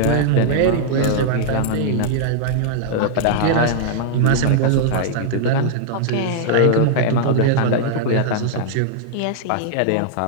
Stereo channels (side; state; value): both; different; correlation -0.01